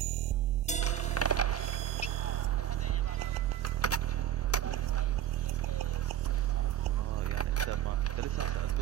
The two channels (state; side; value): quieter; left; 10.7 dB